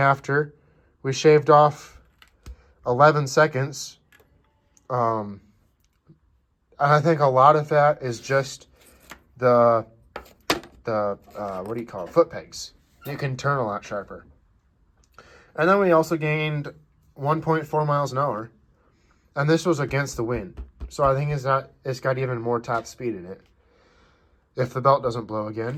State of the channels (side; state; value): both; identical; correlation 1.00